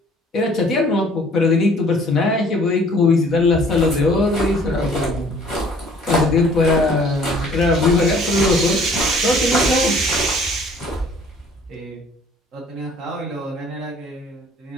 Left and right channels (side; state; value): both; normal; correlation 0.55